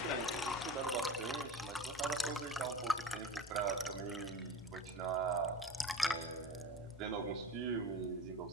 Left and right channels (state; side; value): normal; both; correlation 0.31